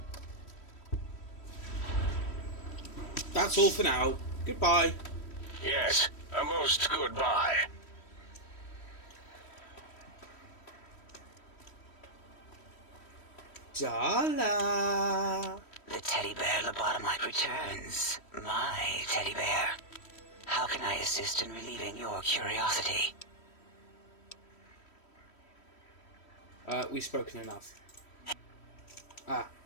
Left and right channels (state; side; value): late; right; 3.1 ms